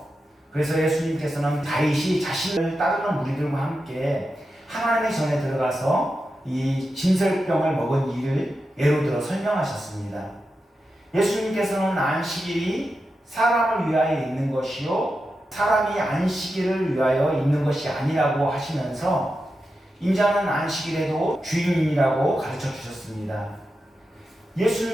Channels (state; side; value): normal; both; correlation 0.89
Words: 그래서 예수님께서는 다윗이 자신을 따르는 무리들과 함께 하나님의 전에 들어가서 이 진설병을 먹은 일을 예로 들어 설명하셨습니다. 예수님께서는 안식일이 사람을 위하여 있는 것이요 사람이 안식일을 위하여 있는 것이 아니라고 하시면서 인자는 안식일에도 주인이라고 가르쳐 주셨습니다.